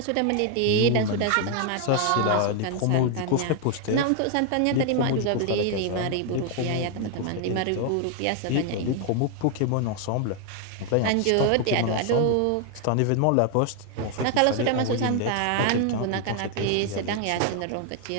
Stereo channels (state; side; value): different; both; correlation 0.00